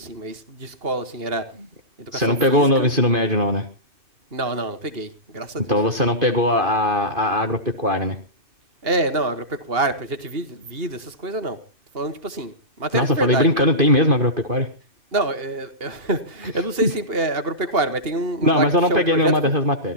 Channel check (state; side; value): late; left; 2.8 ms